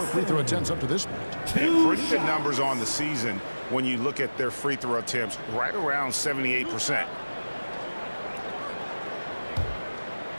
free throw attempts up to this point. And pretty good numbers on the season when you look at their free throw attempts, right around 78%.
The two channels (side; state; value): both; inverted; correlation -1.00